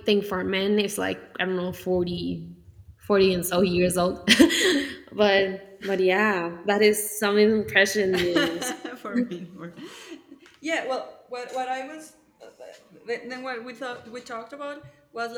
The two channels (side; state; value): both; identical; correlation 1.00